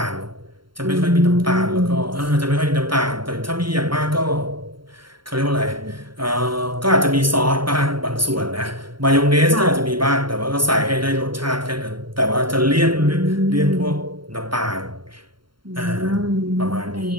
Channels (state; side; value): late; left; 0.73 ms